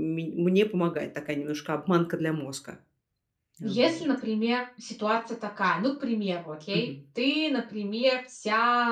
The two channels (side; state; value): both; identical; correlation 1.00